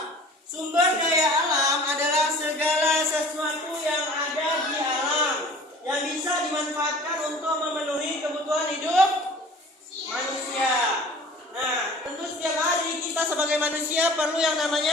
Sumber daya alam adalah segala sesuatu yang ada di alam yang bisa dimanfaatkan untuk memenuhi kebutuhan hidup manusia. Nah, tentu setiap hari kita sebagai manusia perlu yang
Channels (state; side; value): normal; both; correlation 0.46